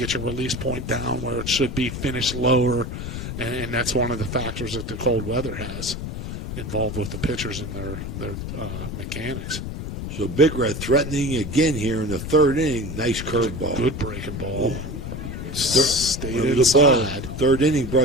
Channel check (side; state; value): left; noise; rumble, 6 dB below the sound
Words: your release point down where it should be, finish lower, and that's one of the factors that the cold weather has involved with the pitchers and their mechanics. So Big Red threatening again here in the third inning. Nice curveball. Good breaking ball. Stayed the inside. ball. Third inning